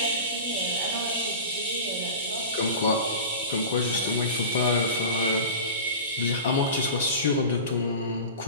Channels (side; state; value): both; inverted; correlation -0.34